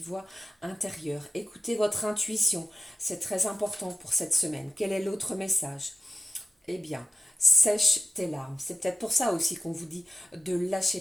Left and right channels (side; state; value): both; normal; correlation 0.95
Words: voix intérieure, écoutez votre intuition. C'est très important pour cette semaine. Quel est l'autre message? Eh bien, sèche tes larmes. C'est peut-être pour ça aussi qu'on vous dit de lâcher